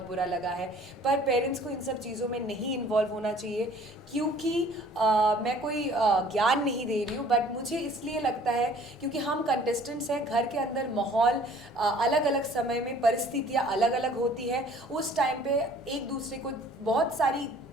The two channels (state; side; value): normal; both; correlation 0.53